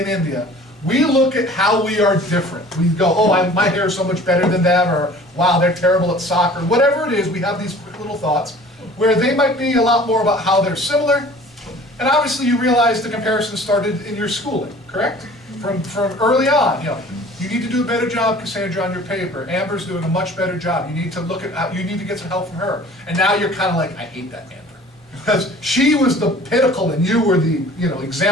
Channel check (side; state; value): both; normal; correlation 0.47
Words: India. We look at how we are different. We go, oh, my hair is so much better than them, or wow, they're terrible at soccer. Whatever it is, we have these quick little thoughts where they might be a lot more about how they're similar. And obviously you realize the comparison started in your schooling, correct? From early on, you know, you need to do a better job, Cassandra, on your paper. Amber's doing a much better job. You need to look at how, you need to get some help from her. And now you're kind of like, I hate that Amber. Because she was the pinnacle and you were the, you know,